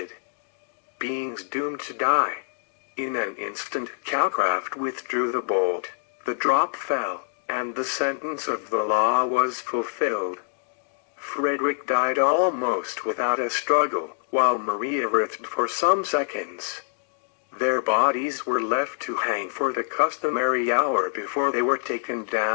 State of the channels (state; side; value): silent; right; digital silence